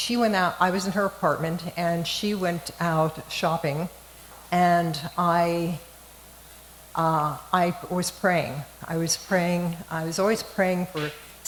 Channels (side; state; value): both; identical; correlation 1.00